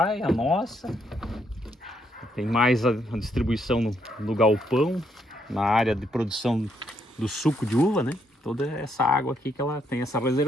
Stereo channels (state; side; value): normal; both; correlation 0.74